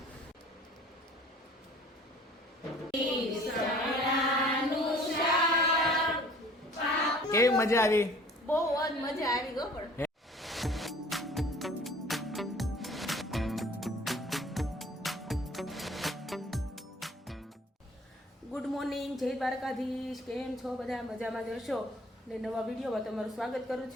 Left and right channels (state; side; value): normal; both; correlation 0.51